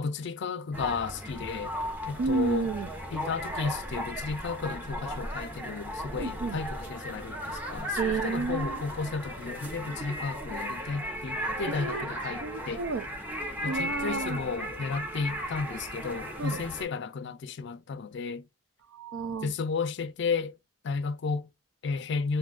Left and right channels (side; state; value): both; normal; correlation 0.37